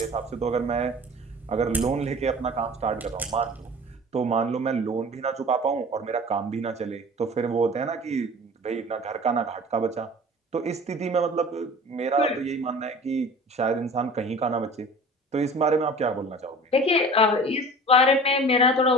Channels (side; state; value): both; normal; correlation 0.42